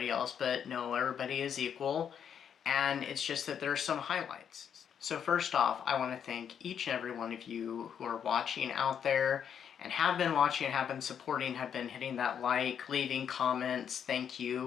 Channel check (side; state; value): right; quieter; 8.2 dB